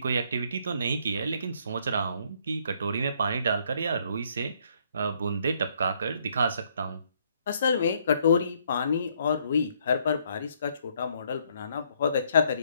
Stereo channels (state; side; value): inverted; both; correlation -0.69